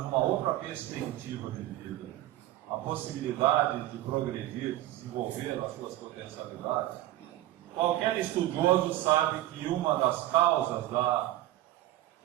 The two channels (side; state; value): left; quieter; 15.1 dB